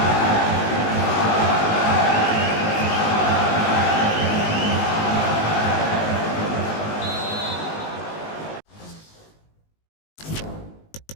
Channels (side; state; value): right; late; 19 ms